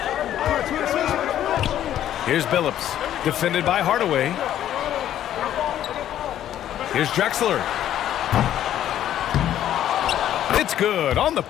Here's Billups, defended by Hardaway. Here's Drexler. It's good on the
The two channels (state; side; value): quieter; right; 11.4 dB